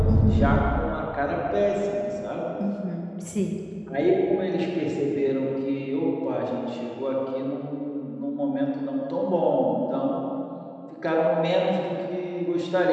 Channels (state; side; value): identical; both; correlation 1.00